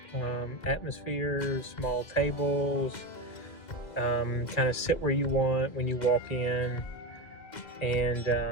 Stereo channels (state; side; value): late; right; 2.1 ms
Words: atmosphere, small tables, kind of sit where you want when you walk in, and